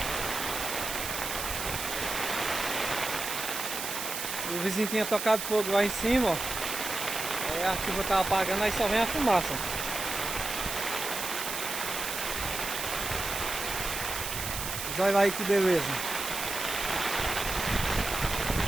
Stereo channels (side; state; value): right; noise; hiss, 4 dB below the sound